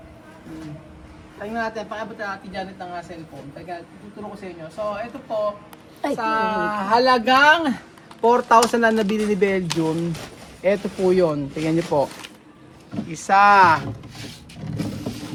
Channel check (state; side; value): identical; both; correlation 1.00